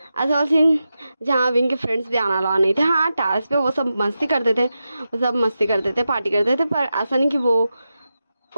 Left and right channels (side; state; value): both; inverted; correlation -0.90